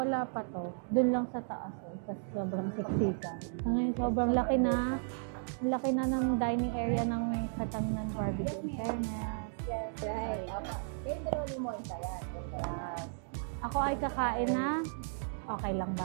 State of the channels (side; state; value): left; silent; digital silence